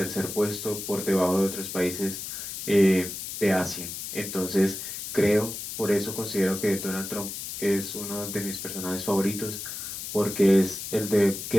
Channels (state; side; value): noise; left; hiss, 7 dB below the sound